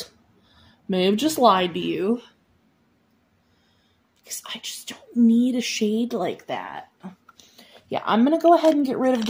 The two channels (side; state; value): both; identical; correlation 1.00